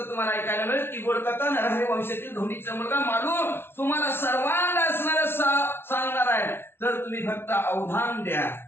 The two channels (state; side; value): late; right; 0.11 ms